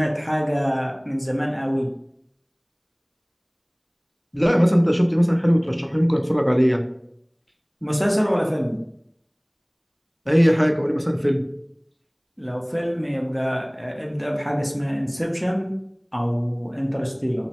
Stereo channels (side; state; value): both; identical; correlation 1.00